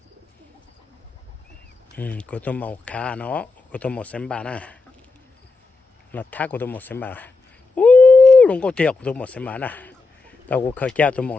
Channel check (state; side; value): quieter; right; 3.9 dB